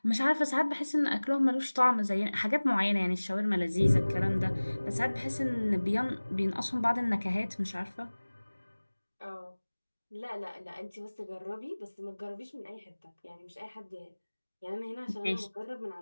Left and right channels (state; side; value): inverted; both; correlation -1.00